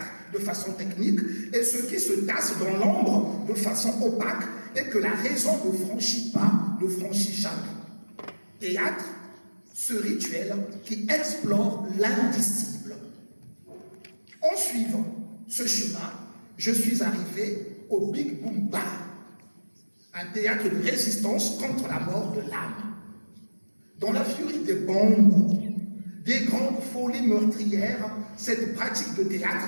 de façon technique et ce qui se tasse dans l'ombre de façon opaque et que la raison ne franchit pas, ne franchit jamais. Théâtre, ce rituel qui explore l'indicible. En suivant ce chemin, je suis arrivé au Big Boom Bar, un théâtre de résistance contre la mort de l'âme. Dans la furie des bombes, des grandes folies meurtrières, cette pratique de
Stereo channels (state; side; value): inverted; both; correlation -1.00